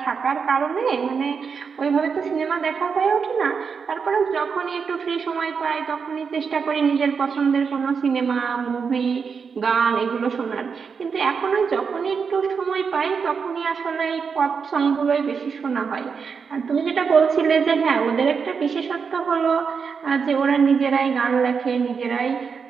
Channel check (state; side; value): quieter; left; 5.9 dB